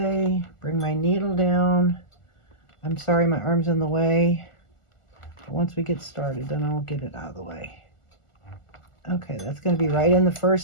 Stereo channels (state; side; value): late; right; 1.4 ms